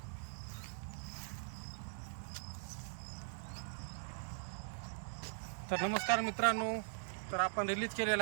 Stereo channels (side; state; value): left; silent; digital silence